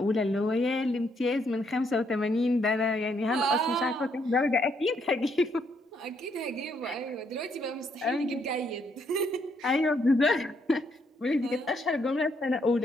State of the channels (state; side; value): normal; both; correlation 0.73